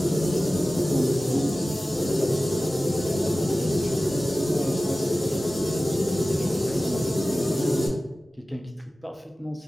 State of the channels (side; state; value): both; normal; correlation 0.96